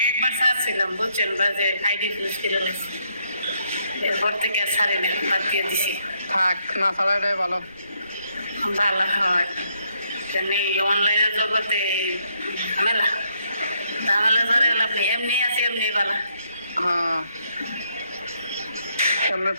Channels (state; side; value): inverted; both; correlation -0.74